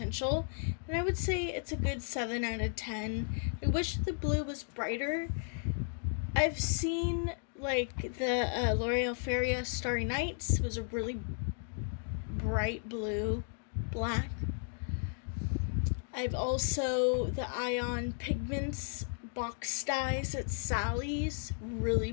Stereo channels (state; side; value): silent; right; 55 dB below the other